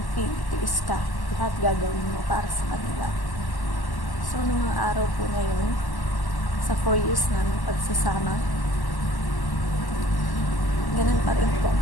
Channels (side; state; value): right; late; 1.1 ms